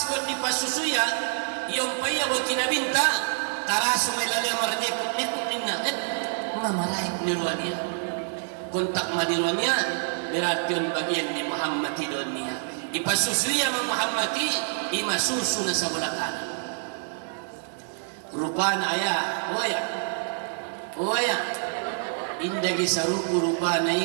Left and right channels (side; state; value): left; silent; digital silence